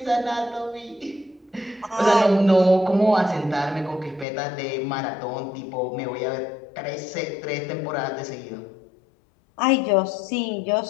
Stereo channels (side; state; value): right; drops out; at 4.2 s